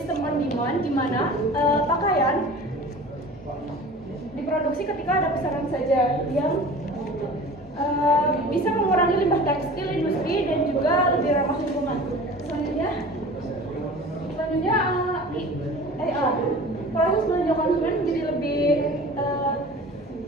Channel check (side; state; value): both; normal; correlation 0.40